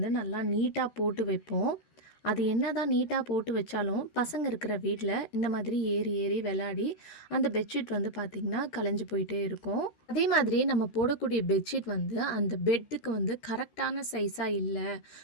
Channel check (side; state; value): right; late; 13 ms